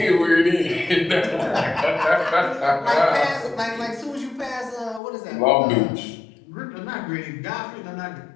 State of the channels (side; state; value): right; drops out; at 5.0 s